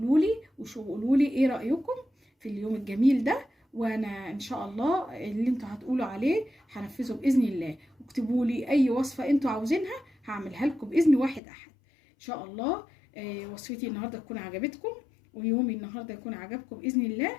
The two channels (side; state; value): right; drops out; at 11.4 s